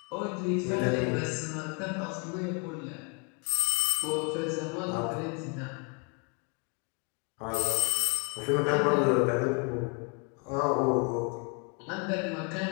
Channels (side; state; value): right; quieter; 34.1 dB